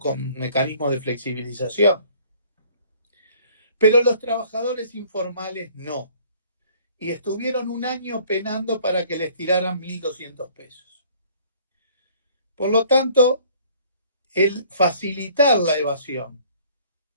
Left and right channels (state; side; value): inverted; both; correlation -0.56